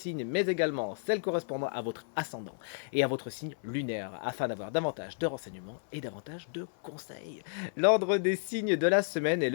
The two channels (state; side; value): silent; right; 56 dB below the other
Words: mais également celle correspondant à votre ascendant et à votre signe lunaire, afin d'avoir davantage de renseignements et davantage de conseils. L'ordre des signes de la semaine est